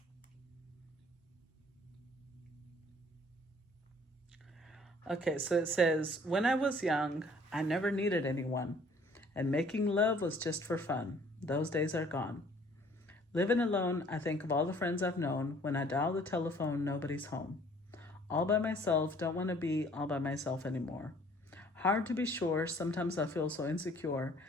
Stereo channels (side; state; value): both; normal; correlation 0.57